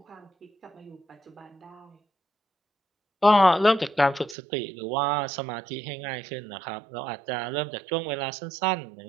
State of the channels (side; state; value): left; drops out; at 4.4 s